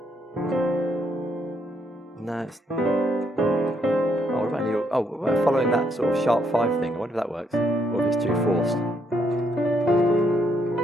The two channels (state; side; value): normal; both; correlation 0.73